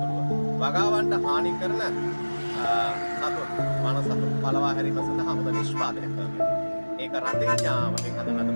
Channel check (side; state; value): both; inverted; correlation -1.00